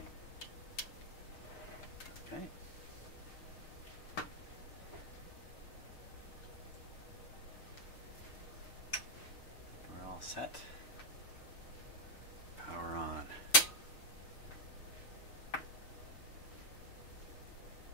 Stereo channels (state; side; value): late; right; 6.5 ms